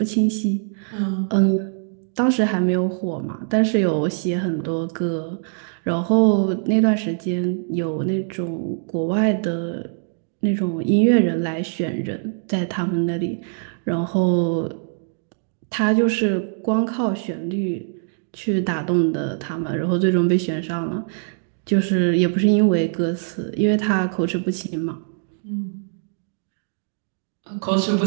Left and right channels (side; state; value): left; silent; digital silence